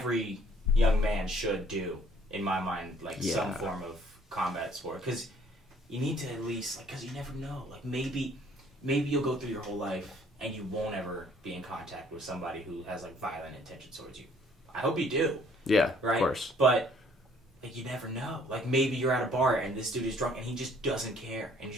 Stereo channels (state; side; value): normal; both; correlation 0.60